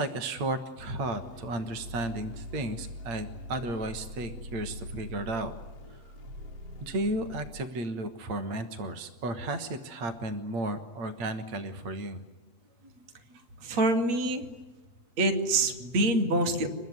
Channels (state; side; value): late; left; 8.6 ms